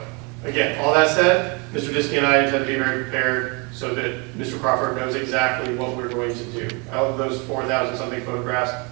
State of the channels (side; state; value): left; quieter; 31.0 dB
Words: again, all that said, Mr. Diskey and I intend to be very prepared so that Mr. Crawford knows exactly what we're going to do. Out of those 4,000 something photographs,